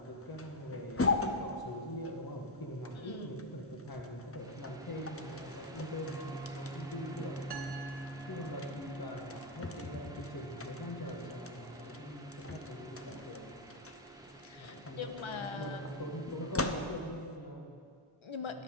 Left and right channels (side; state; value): both; normal; correlation 0.04